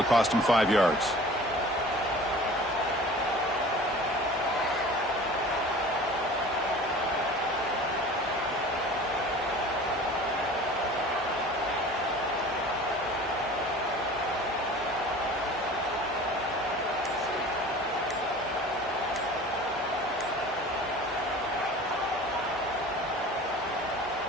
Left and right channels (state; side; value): normal; both; correlation 0.42